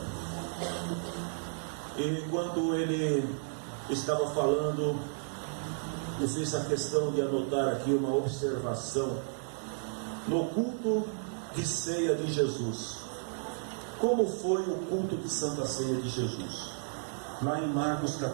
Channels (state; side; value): silent; left; digital silence